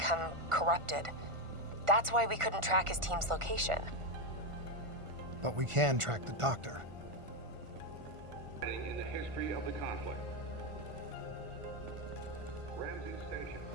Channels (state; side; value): late; left; 1.5 ms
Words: corrupted. That's why we couldn't track his team's location. But we can track the doctor. In the history of the conflict, Ramsey Station,